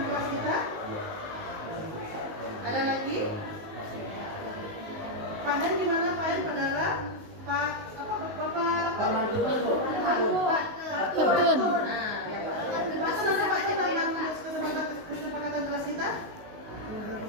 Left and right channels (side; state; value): left; late; 19 ms